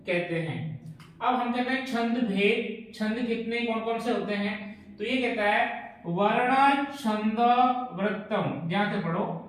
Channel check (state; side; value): identical; both; correlation 1.00